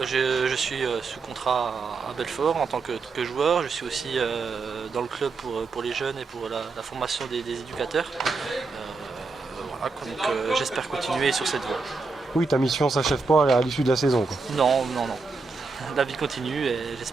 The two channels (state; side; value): quieter; left; 4.2 dB